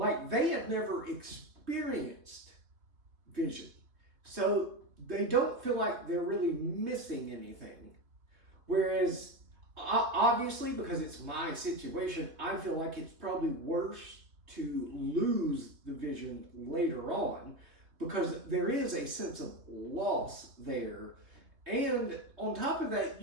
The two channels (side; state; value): left; late; 3.1 ms